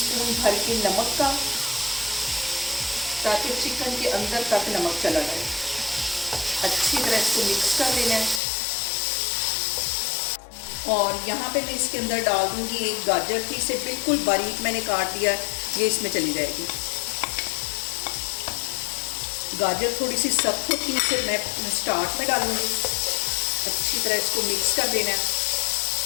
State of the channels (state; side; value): drops out; right; at 8.4 s